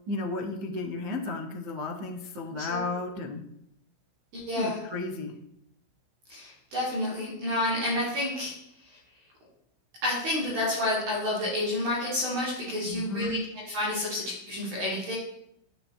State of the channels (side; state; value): left; late; 16 ms